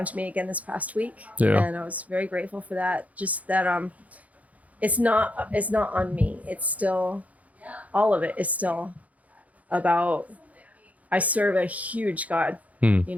to me again this past week. And I was very grateful for that. Just that it's not on me. It's still, all of it is still about, I serve a huge God,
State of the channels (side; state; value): left; late; 0.071 ms